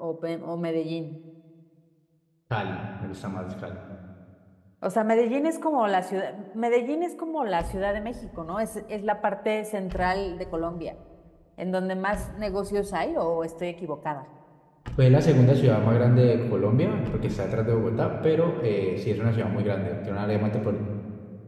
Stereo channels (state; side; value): identical; both; correlation 1.00